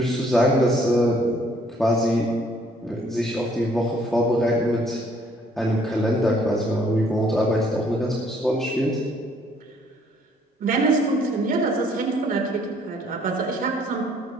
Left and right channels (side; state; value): both; normal; correlation 0.63